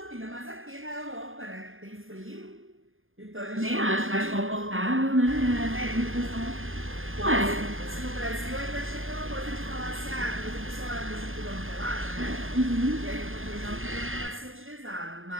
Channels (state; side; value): late; left; 0.59 ms